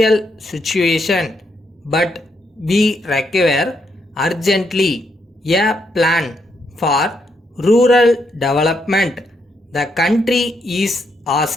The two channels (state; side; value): normal; both; correlation 0.77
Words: situation, but we require urgently a plan for rural development. The country is